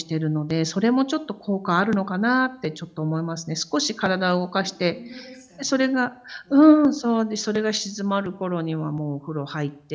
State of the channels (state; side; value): identical; both; correlation 1.00